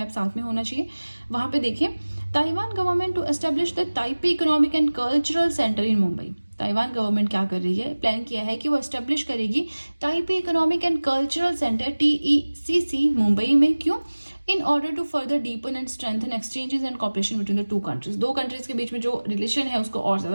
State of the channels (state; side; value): inverted; both; correlation -1.00